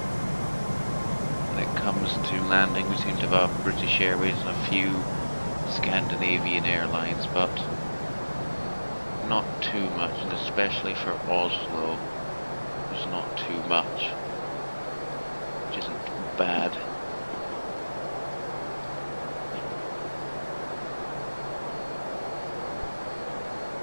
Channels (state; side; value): inverted; both; correlation -1.00